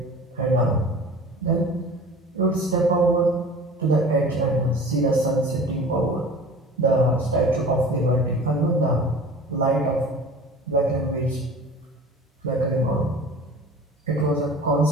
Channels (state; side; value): normal; both; correlation 0.40